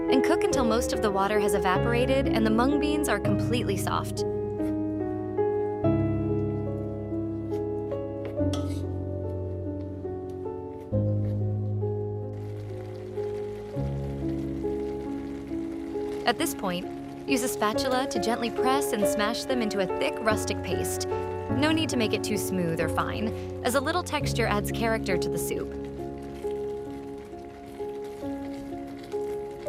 and cook until most of the water has evaporated and the mung beans are completely soft. At this point, use a spatula to gently press and smash them into a thick rustic paste. No need to make it too smooth or fine, as a little texture adds character to the soup.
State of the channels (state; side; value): identical; both; correlation 1.00